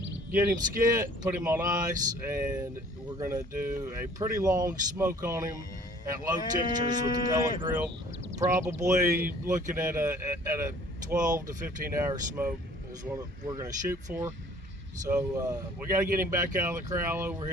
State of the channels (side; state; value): both; normal; correlation 0.53